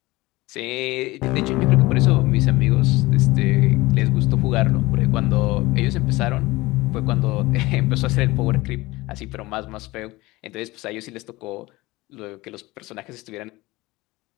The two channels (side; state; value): right; quieter; 20.5 dB